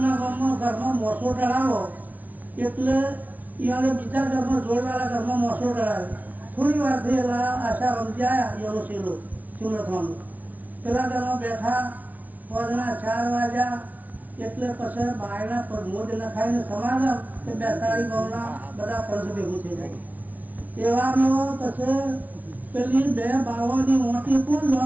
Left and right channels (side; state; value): left; late; 0.075 ms